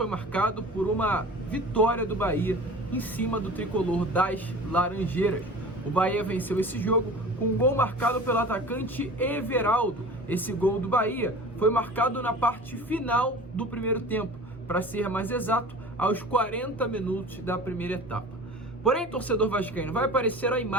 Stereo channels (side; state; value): both; normal; correlation 0.39